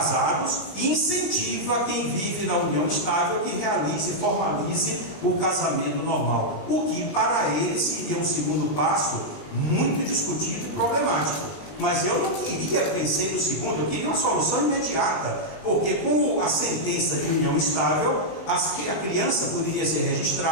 e incentiva quem vive na união estável que realize e formalize o casamento normal, o que para eles seria um segundo passo muito discutido e problemático. Mas eu não queria pensar no segundo, eu queria uma solução imediata, porque com a sentença de união estável, a criança poderia ser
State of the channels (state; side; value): late; right; 20 ms